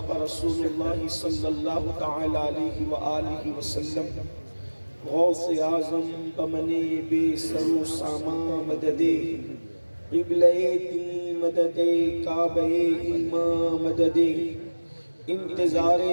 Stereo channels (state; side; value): inverted; both; correlation -1.00